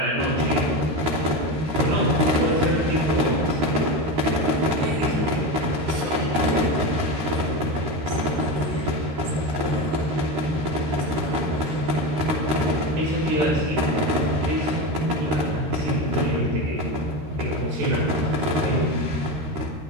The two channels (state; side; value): late; left; 13 ms